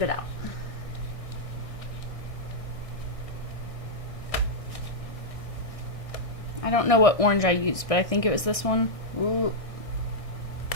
it out. I don't know what orange I used, but I think it was this one. Ooh.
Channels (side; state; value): right; late; 1.6 ms